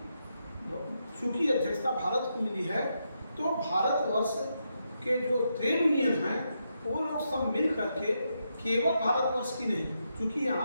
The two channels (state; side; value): inverted; both; correlation -0.83